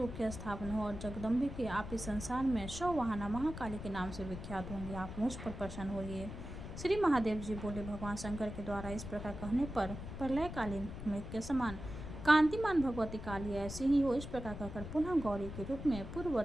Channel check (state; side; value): noise; left; rumble, 9 dB below the sound